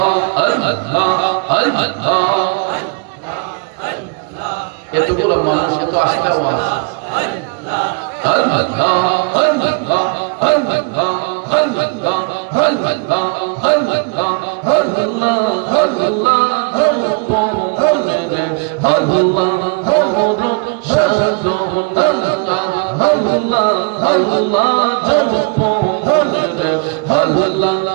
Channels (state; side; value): quieter; left; 32.0 dB